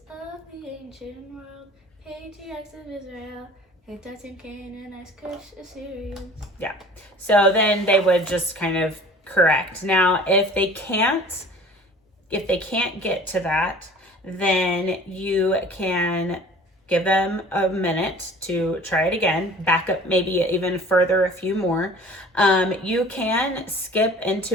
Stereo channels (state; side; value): normal; both; correlation 0.46